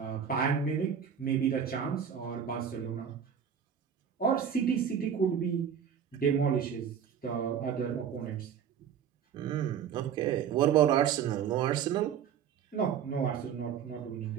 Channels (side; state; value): left; quieter; 8.1 dB